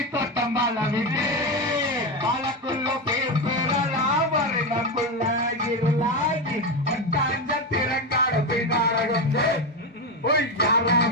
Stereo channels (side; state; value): both; normal; correlation 0.14